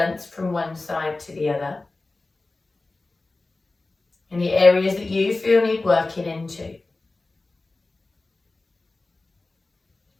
from one side to the other. Any areas that you feel need working into.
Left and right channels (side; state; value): right; quieter; 3.3 dB